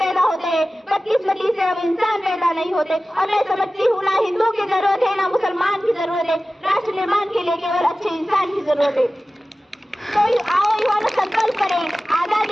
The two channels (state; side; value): normal; both; correlation 0.96